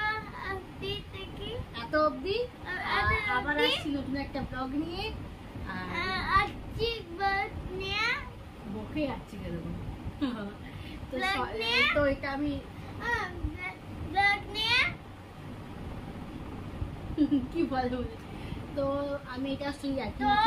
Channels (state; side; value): identical; both; correlation 1.00